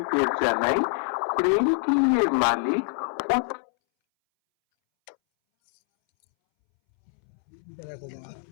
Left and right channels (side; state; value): right; silent; 62 dB below the other